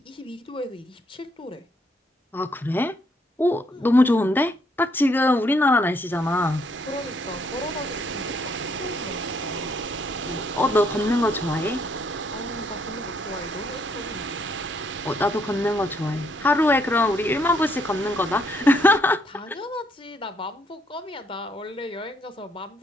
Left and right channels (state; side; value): normal; both; correlation 0.71